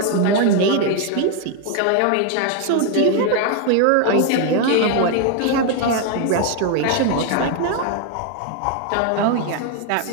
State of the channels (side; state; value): both; different; correlation 0.01